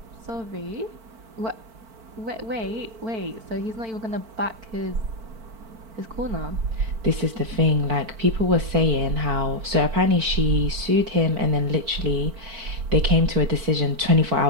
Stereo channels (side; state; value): left; late; 4.5 ms